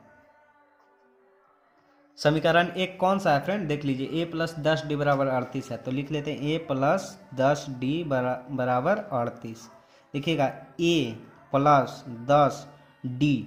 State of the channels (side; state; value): both; identical; correlation 1.00